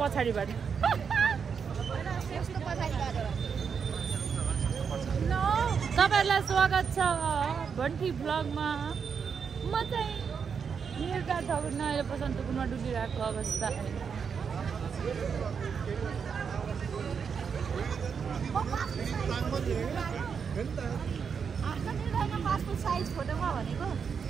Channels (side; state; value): left; quieter; 6.4 dB